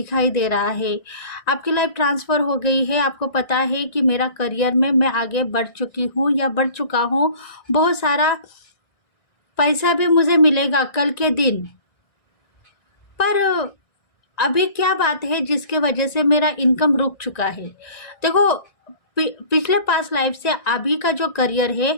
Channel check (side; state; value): right; late; 1.9 ms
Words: दे रहा है। आपकी लाइफ ट्रांसफ़र हो गई है, आपको पता है कि मेरा करियर में मैं आगे बढ़ चुकी हूँ या बढ़ चुका हूँ। बहुत सारा पैसा भी मुझे मिलेगा कल के दिन। पर अभी क्या बात है जिसके वजह से मेरा इनकम रुक चुका है? देखो, पिछले पास्ट लाइफ से अभी का जो करियर है